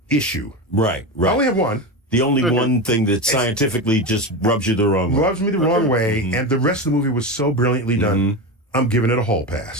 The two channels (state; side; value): normal; both; correlation 0.20